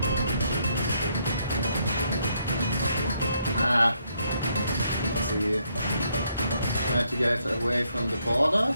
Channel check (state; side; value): inverted; both; correlation -0.74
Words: Let's see. Try to get away from the border.